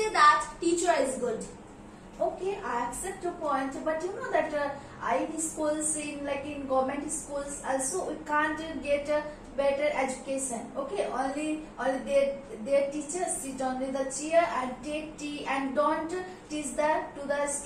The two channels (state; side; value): identical; both; correlation 1.00